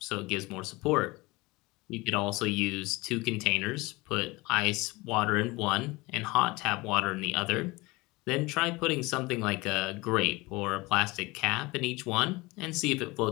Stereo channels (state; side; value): quieter; right; 22.8 dB